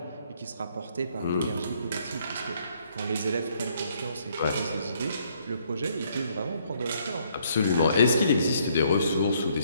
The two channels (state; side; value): inverted; both; correlation -0.68